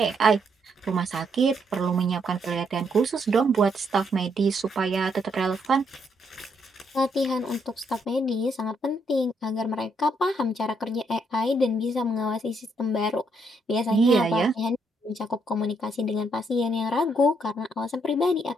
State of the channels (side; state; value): both; normal; correlation 0.74